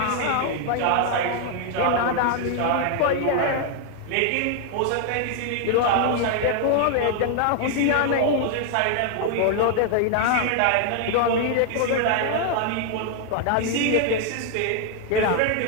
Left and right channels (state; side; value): different; both; correlation 0.00